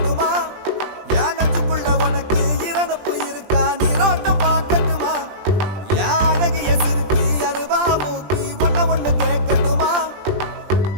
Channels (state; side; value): late; left; 20 ms